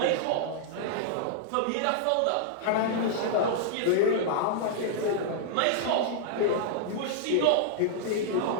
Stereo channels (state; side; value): different; both; correlation -0.01